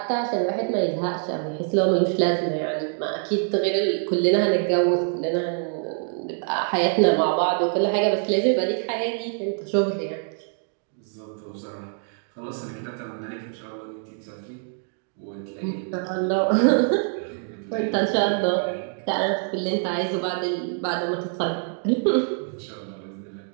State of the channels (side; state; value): left; silent; 57 dB below the other